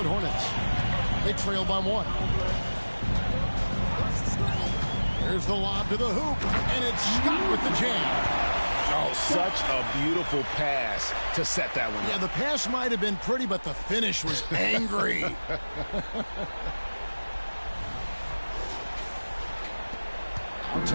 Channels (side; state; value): both; inverted; correlation -1.00